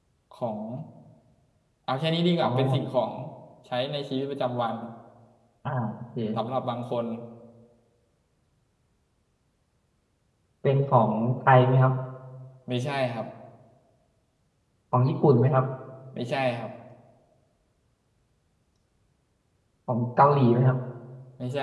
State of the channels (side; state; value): both; identical; correlation 1.00